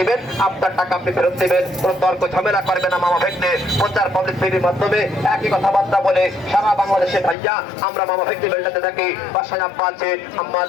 আপনার টাকা আপনি ফেরত দিবেন। কোনো তর্ক ঝামেলা করবে না মামা ভেগনে। প্রচার পাবলিক টিভির মাধ্যমে একই কথাবার্তা বলে সারা বাংলাদেশে ভাইয়া আমরা মামা ভেগনে বেলটাতে থাকি। বাসায় আব্বা আছে, আম্মা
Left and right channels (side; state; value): right; drops out; at 7.4 s